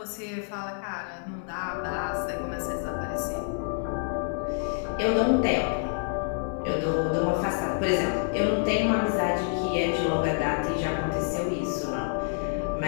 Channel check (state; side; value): silent; right; 60 dB below the other